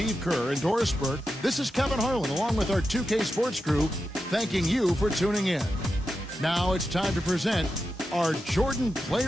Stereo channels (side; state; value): both; normal; correlation 0.89